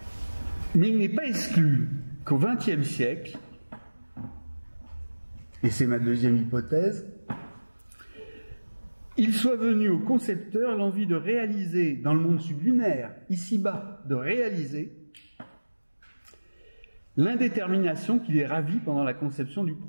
Mais il n'est pas exclu qu'au XXe siècle, et c'est ma deuxième hypothèse, il soit venu aux concepteurs l'envie de réaliser, dans le monde sublunaire, ici-bas, de réaliser l'indétermination qui les ravit pendant la conception du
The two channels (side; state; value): both; inverted; correlation -1.00